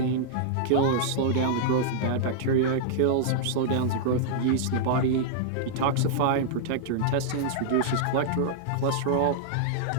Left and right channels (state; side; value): different; both; correlation -0.01